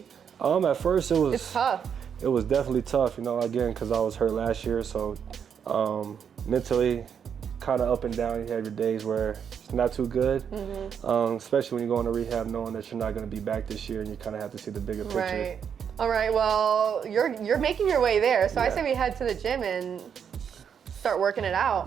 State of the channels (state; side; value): quieter; left; 7.6 dB